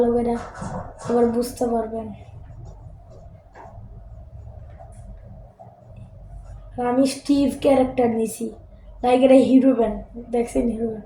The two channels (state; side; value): identical; both; correlation 1.00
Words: করে, আবার বুঝতে পারবেন। আমি স্টিভ ক্যারেক্টার নিছি, লাইক এটা হিরো ব্যান্ড, দেখছেন হিরো